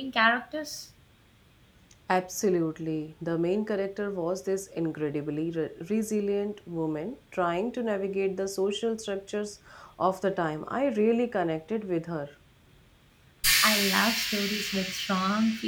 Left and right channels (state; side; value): identical; both; correlation 1.00